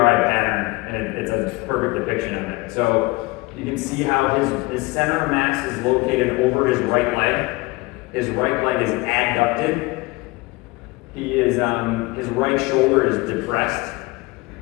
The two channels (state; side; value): quieter; right; 23.2 dB